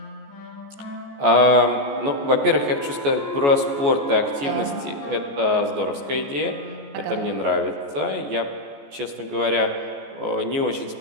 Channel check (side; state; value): left; late; 14 ms